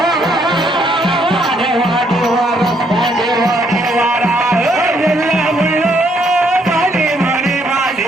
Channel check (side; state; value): both; normal; correlation 0.70